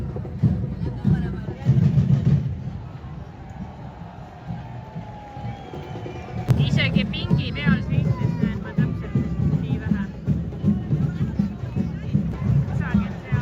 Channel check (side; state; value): both; identical; correlation 1.00